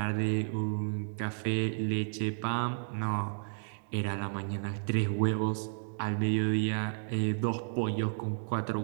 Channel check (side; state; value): left; silent; digital silence